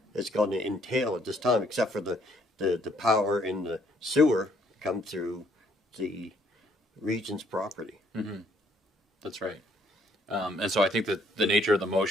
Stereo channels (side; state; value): both; normal; correlation 0.66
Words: it's going to entail at this time, except for the power and the sewer come through the region's property. Mm-hmm. That's right. And so I think that the nature of the